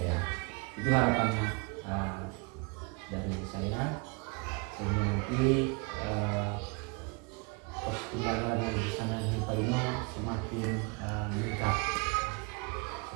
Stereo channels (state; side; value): quieter; left; 30.9 dB